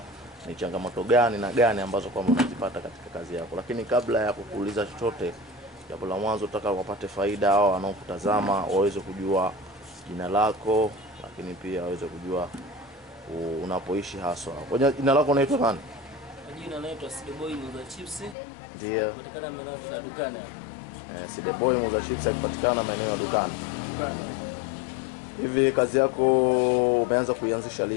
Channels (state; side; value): drops out; right; at 18.4 s